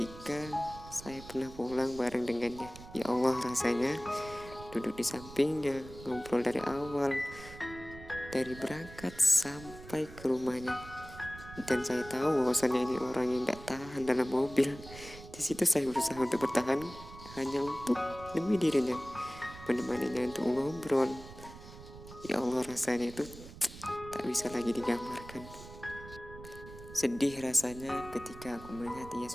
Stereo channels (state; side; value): noise; right; rumble, 16 dB below the sound